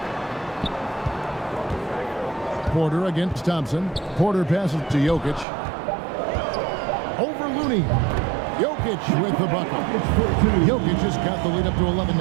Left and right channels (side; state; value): left; drops out; at 5.5 s